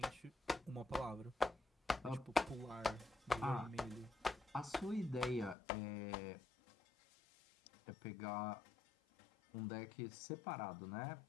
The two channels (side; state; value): right; drops out; at 5.6 s